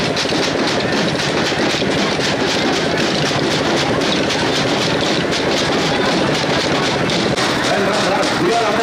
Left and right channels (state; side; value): identical; both; correlation 1.00